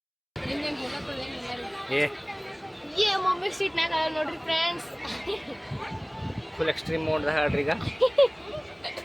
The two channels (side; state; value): both; identical; correlation 1.00